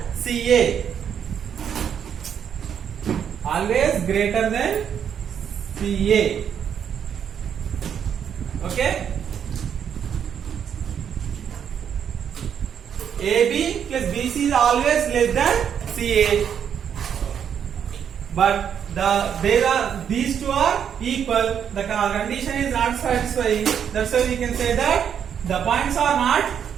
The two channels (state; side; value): quieter; left; 8.3 dB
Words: CA. Always greater than CA. Okay? AB plus BC is always less than CA. But these two are equal. The condition is not satisfying. That's why we can say that the points are not